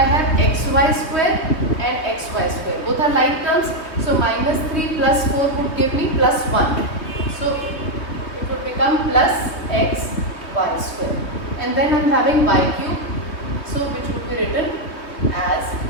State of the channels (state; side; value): late; right; 3.2 ms